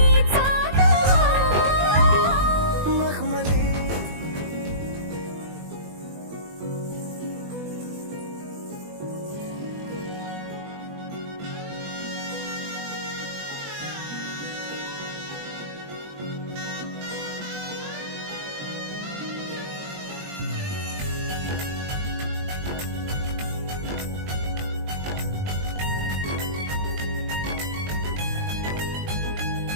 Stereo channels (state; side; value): late; left; 20 ms